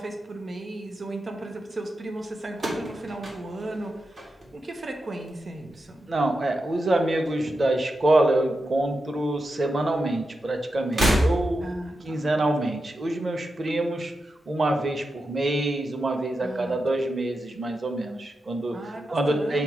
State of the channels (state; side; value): normal; both; correlation 0.89